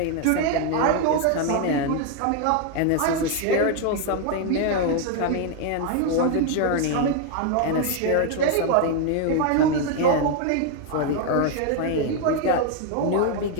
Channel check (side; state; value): both; different; correlation 0.00